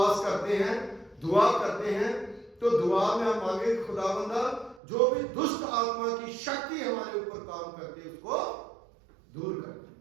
करते हैं, दुआ करते हैं, तो दुआ में हम मांगे खुदावंदा जो भी दुष्ट आत्मा की शक्ति हमारे ऊपर काम करती है उसको दूर कर दे।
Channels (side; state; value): left; drops out; at 4.8 s